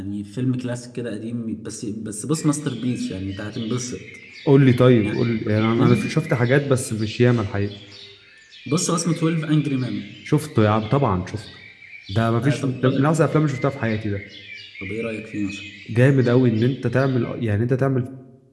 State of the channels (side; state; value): both; identical; correlation 1.00